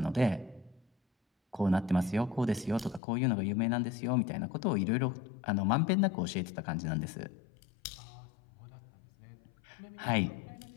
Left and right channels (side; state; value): right; drops out; at 3.0 s